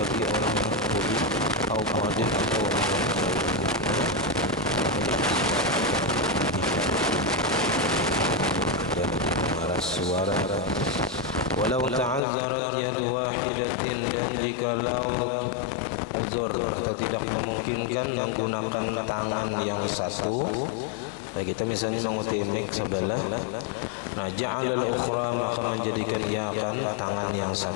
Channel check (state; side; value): drops out; right; at 12.2 s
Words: orang yang budi atau muadzin atau orang yang suara walau ta'azzarat yadu wahidatin dan jikalau uzur atau tidak memungkinkan menggunakan tangan yang satu. Nah, kita misalnya mengutip mic sebelah, nah ja'alal ukhra maka menjadikan ia akan tangan yang